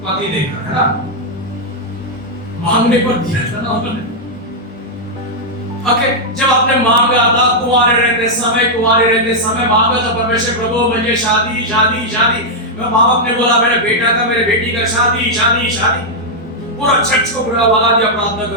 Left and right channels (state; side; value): normal; both; correlation -0.04